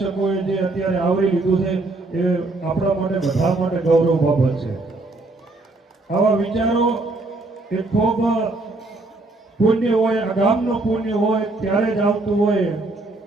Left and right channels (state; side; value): quieter; left; 3.1 dB